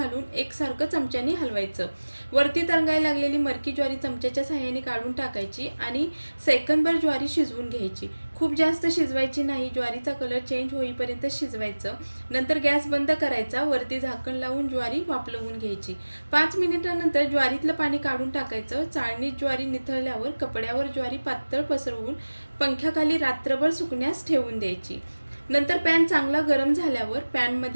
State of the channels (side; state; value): both; inverted; correlation -1.00